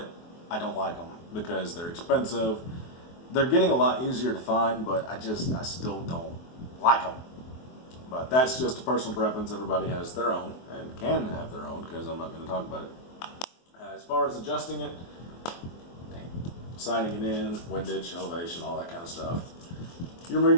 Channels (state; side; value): late; right; 23 ms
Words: I don't like them because they're expensive. They're getting a lot easier to find, but I still don't like them. But that's just a personal preference. Everybody has their own and can have their own, because I'm not going to talk about it. As far as adjusting it, sighting it in, windage, elevation, all that kind of stuff. You remove